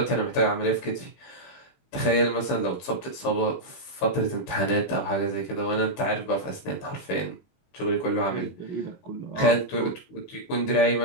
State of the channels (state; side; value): late; right; 22 ms